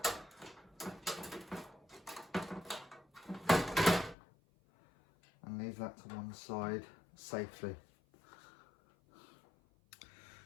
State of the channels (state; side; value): drops out; right; at 4.2 s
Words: And leave that to one side safely.